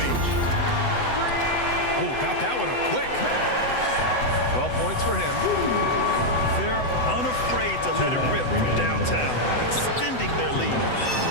Oh, got that one up quick. 12 points for him. They're unafraid to let it rip from downtown, extending their lead.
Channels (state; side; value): late; right; 8.0 ms